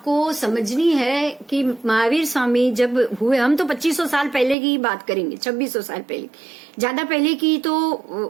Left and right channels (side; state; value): left; drops out; at 4.5 s